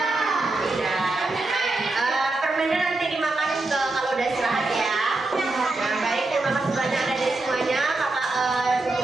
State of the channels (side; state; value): left; quieter; 3.0 dB